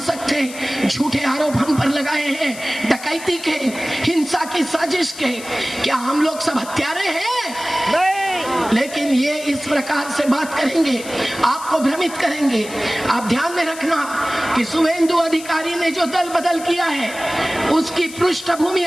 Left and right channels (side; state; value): left; noise; hiss, 14 dB below the sound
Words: थे, झूठे आरोप हम पर लगाए हैं डकैती के, हिंसा की साजिश के। क्या हम लोग सब हत्यारे हैं? नहीं। लेकिन ये इस प्रकार से बात करेंगे, आपको भ्रमित करेंगे। आप ध्यान में रखना कि शुभेंदु अधिकारी ने जो दल बदल किया है उसकी पृष्ठभूमि